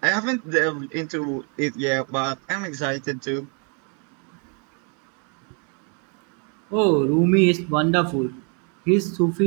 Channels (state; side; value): quieter; left; 38.5 dB